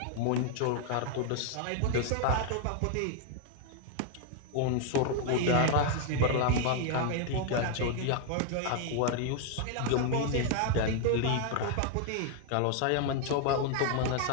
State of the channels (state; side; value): different; both; correlation 0.00